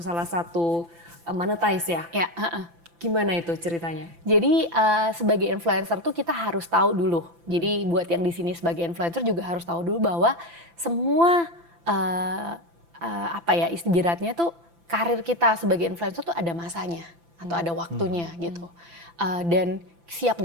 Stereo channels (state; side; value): late; left; 5.9 ms